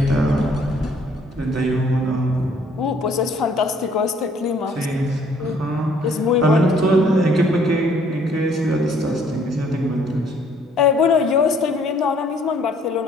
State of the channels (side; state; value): both; normal; correlation 0.61